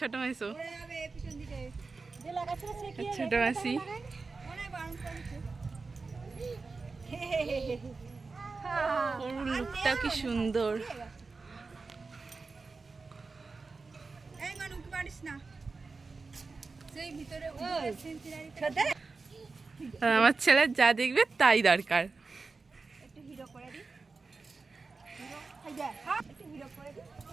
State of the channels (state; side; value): quieter; left; 4.1 dB